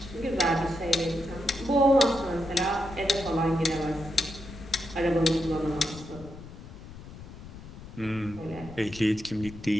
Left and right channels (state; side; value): noise; left; rumble, 15 dB below the sound